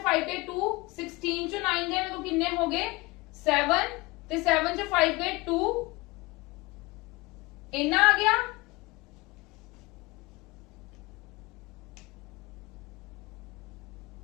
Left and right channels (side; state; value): right; quieter; 22.8 dB